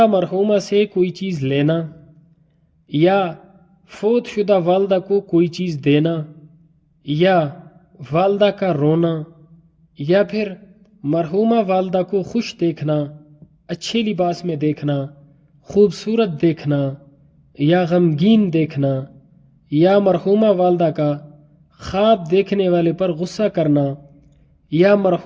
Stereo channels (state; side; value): identical; both; correlation 1.00